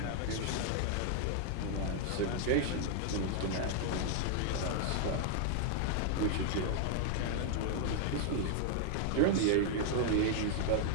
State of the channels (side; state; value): both; different; correlation 0.00